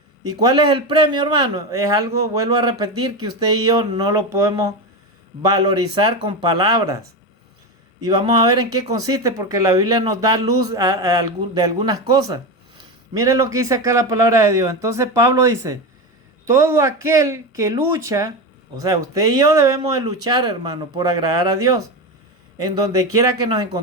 ¿Y cuál es el premio, hermano? Es algo, vuelvo a repetir, que usted y yo no lo podemos valorizar con palabras. Y vamos a ver en qué consiste, porque la Biblia nos da luz de algunas cosas. Miren lo que dice acá la palabra de Dios. Entonces Pablo dice, todo aquel que lucha, o sea, usted y yo debemos de luchar, hermano, por agradar a Dios, en donde quiera que nos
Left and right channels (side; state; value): both; normal; correlation 0.18